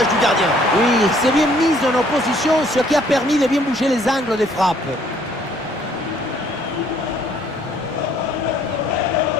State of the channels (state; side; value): normal; both; correlation 0.62